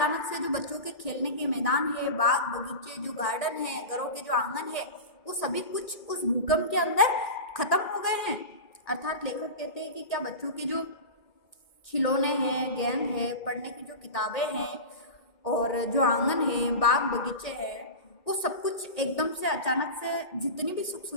से जो बच्चों के खेलने के मैदान है, बाग बगीचे, जो गार्डन है, घरों के जो आंगन है, वो सभी कुछ उस भूकंप के अंदर खत्म हो गए हैं। अर्थात लेखक कहते हैं कि क्या बच्चों के जो खिलौने हैं, गेंद है, पढ़ने की जो किताबें हैं और जो आंगन है, बाग बगीचे हैं, वो सब कुछ एकदम से अचानक से जितनी भी सुख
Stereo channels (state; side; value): late; right; 1.8 ms